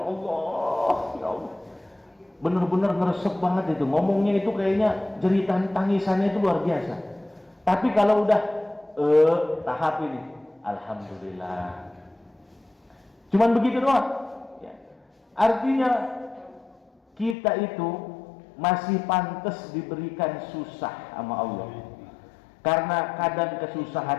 Allah, ya Allah, bener-bener ngeresep banget itu, ngomongnya itu kayaknya jeritan tangisannya itu luar biasa. Tapi kalau udah tahap ini, alhamdulillah, cuman begitu doang, ya. Artinya kita itu masih pantas diberikan susah sama Allah. Karena kadang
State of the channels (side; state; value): right; drops out; at 17.4 s